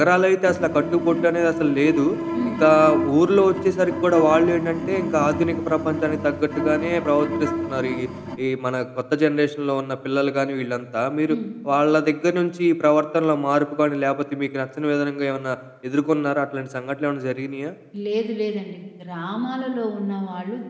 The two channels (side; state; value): both; identical; correlation 1.00